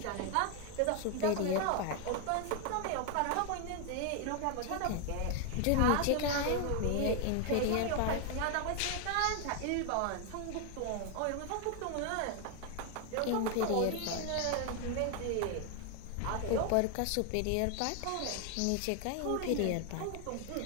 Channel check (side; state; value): both; different; correlation 0.01